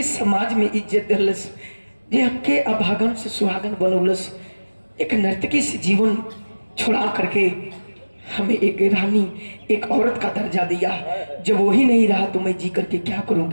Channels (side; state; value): both; inverted; correlation -1.00